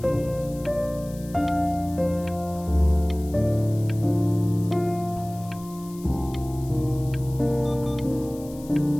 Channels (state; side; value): noise; left; hiss, 21 dB below the sound